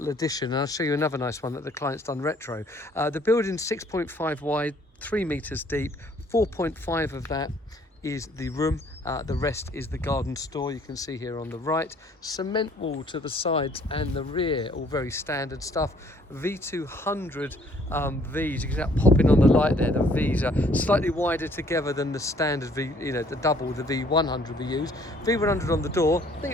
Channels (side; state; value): both; normal; correlation 0.61